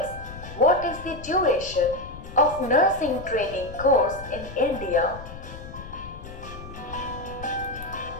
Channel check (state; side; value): noise; left; rumble, 13 dB below the sound